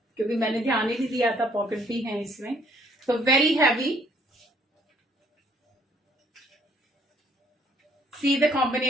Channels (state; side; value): normal; both; correlation 0.65